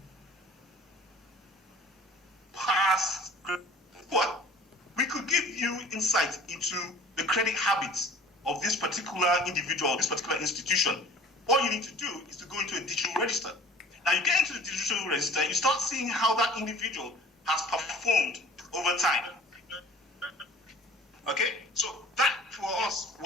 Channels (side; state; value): both; normal; correlation 0.47